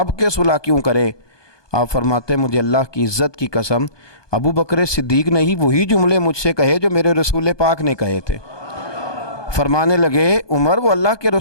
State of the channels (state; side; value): late; right; 1.2 ms